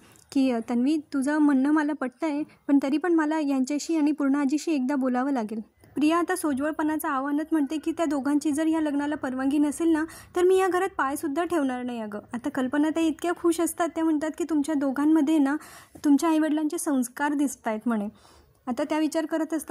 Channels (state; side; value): identical; both; correlation 1.00